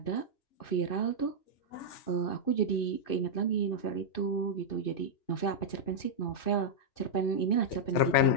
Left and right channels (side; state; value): right; late; 2.6 ms